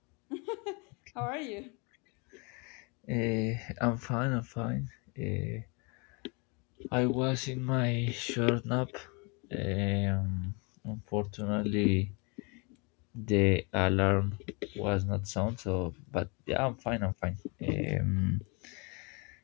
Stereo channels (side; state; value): right; quieter; 31.2 dB